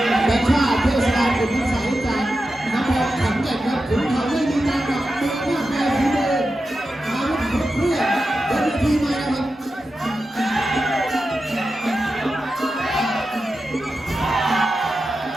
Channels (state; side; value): normal; both; correlation 0.91